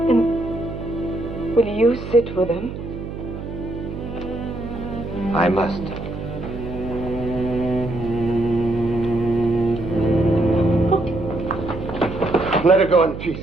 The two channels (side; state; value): right; noise; hum, 8 dB below the sound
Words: And will you sit with them? I must. Let her go in peace.